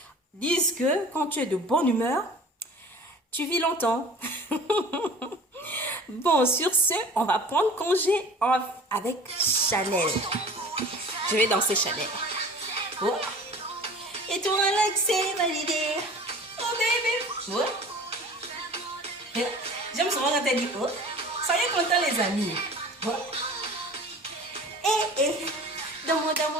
disent que quand tu es de bonne humeur, tu vis longtemps. Bon, sur ce, on va prendre congé avec Chanel. Je vais danser Chanel. Oh. Et toi, Alex, c'est validé. Oh, baby. Oh. J'aime souvent quand elle dit oh. Soyez contents, les amis. Oh. Dans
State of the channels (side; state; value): both; normal; correlation 0.43